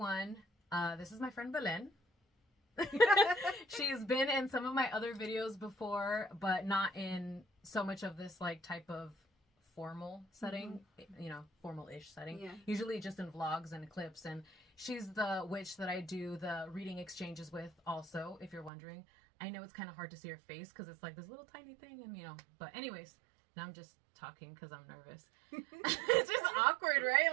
everyone. This is my friend Belen. She's been in some of my other videos before, but not in so much of this like type of formal setting, you know, formal-ish setting. Yeah. Usually just in vlogs and clips. And she's the witch that I do the reading exchanges with also, if you're wondering. I know it's kind of hard to see her face because it's like this little tiny thing, and you know, but anyways, now I'm just talking because I'm nervous. It's just awkward, right?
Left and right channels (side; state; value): left; drops out; at 18.7 s